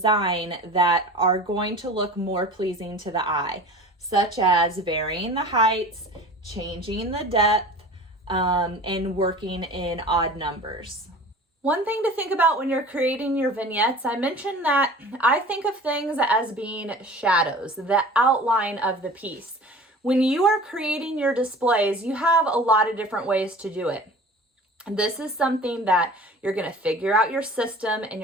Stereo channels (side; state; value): both; normal; correlation 0.40